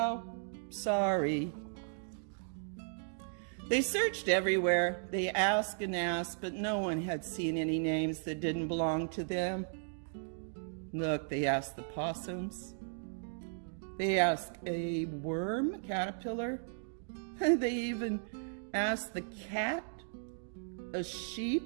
Sorry. They searched everywhere. They asked and asked, but no one had seen any names that didn't belong to them. Look, they asked the possums. They asked a worm, caterpillar. They even asked the cat, a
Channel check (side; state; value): left; silent; digital silence